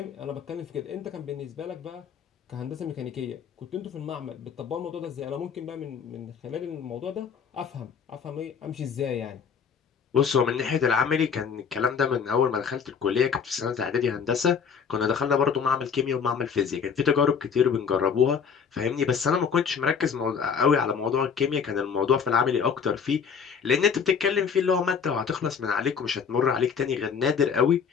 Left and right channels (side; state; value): right; quieter; 6.5 dB